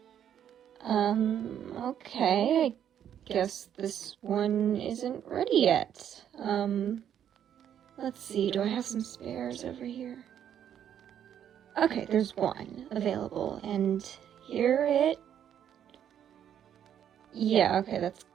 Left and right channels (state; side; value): quieter; left; 9.6 dB